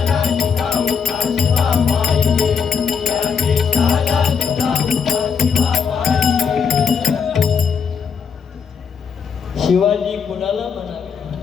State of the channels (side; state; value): right; quieter; 6.3 dB